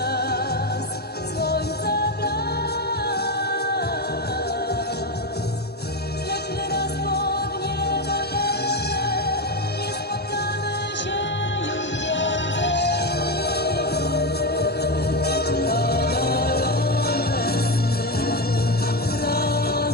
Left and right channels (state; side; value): normal; both; correlation 0.13